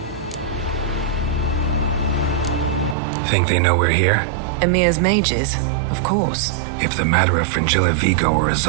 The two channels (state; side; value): drops out; left; at 3.0 s